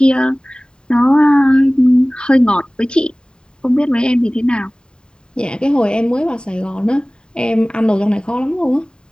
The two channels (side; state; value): right; late; 0.049 ms